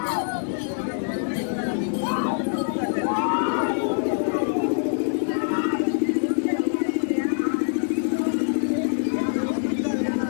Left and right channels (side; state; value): right; silent; 62 dB below the other